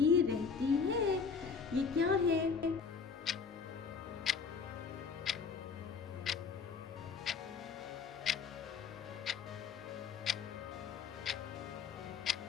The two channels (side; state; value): right; quieter; 5.6 dB